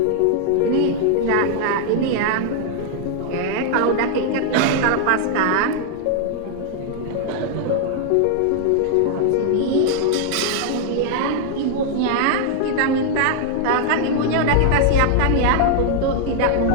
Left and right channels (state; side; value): different; both; correlation 0.00